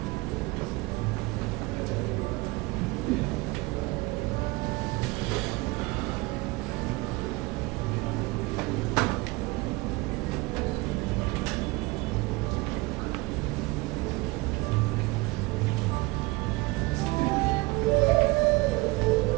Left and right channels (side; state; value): left; quieter; 23.3 dB